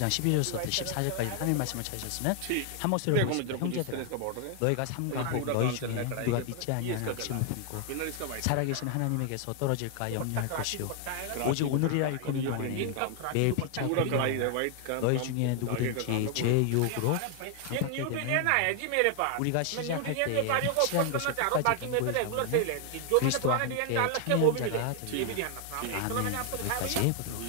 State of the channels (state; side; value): different; both; correlation 0.00